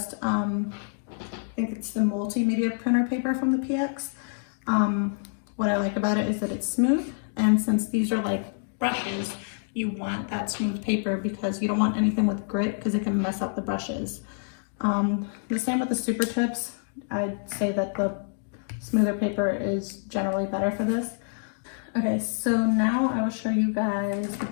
I think it's the multimedia printer paper from the PX. What I like about it is that it's smooth, and since these are like brushes, you want that smooth paper because you don't want anything with grit because it can mess up the brushes. The same with the super tips. I'd say that the smoother paper is generally better for this. Okay, so now I will show you guys the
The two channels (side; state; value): right; silent; digital silence